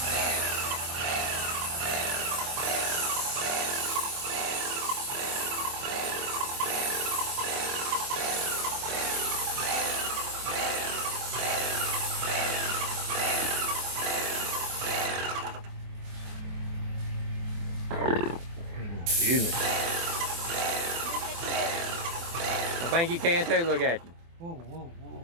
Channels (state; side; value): late; left; 24 ms